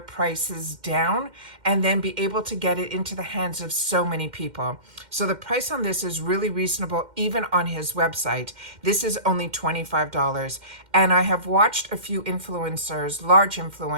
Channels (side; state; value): left; late; 2.1 ms